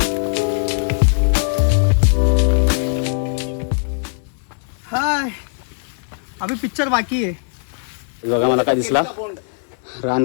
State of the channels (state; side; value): silent; right; digital silence